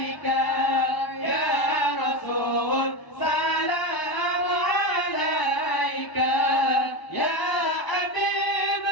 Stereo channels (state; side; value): late; right; 1.0 ms